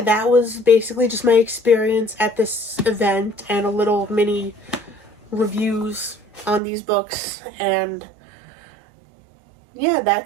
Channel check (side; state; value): left; drops out; at 6.6 s